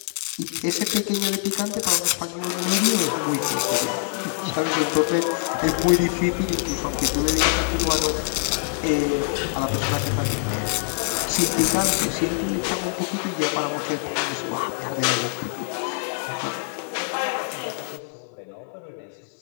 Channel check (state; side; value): silent; right; digital silence